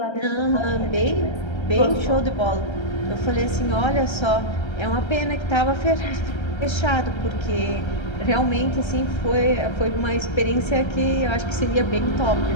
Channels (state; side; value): late; right; 1.3 ms